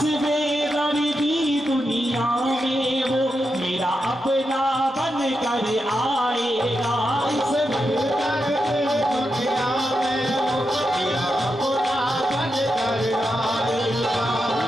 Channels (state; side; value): normal; both; correlation 0.86